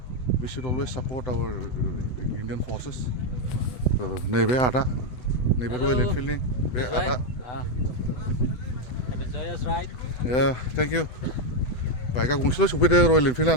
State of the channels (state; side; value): late; right; 8.0 ms